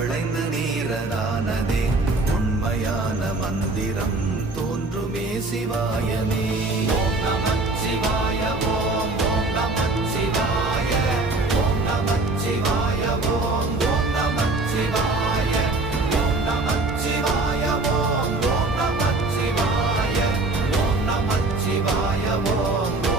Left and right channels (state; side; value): quieter; left; 3.1 dB